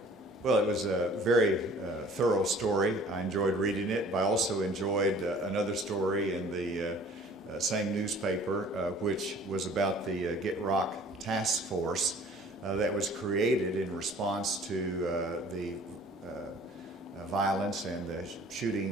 Well, it was a very thorough story. I enjoyed reading it, but I also enjoyed another story in the same newspaper, which was about the Get Rock Task Force that was created in response to the violence and the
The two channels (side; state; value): both; normal; correlation 0.51